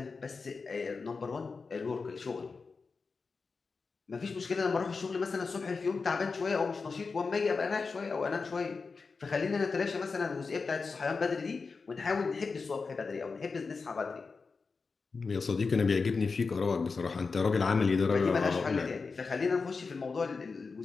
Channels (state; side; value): quieter; right; 4.6 dB